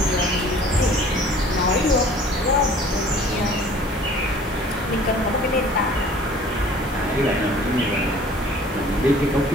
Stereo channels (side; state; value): both; normal; correlation 0.50